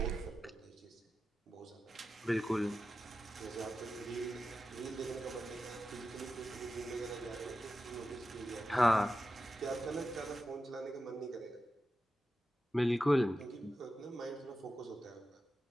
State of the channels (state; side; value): normal; both; correlation 0.92